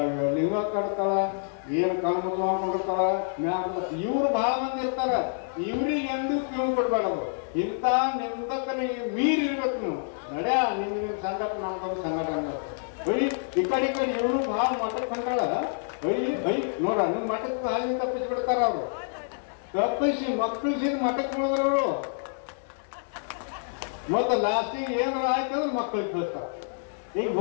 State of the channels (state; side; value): silent; right; digital silence